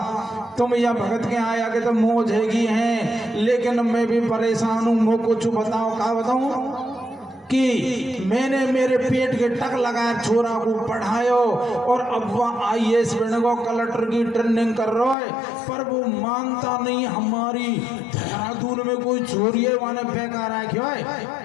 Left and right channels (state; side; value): drops out; right; at 15.2 s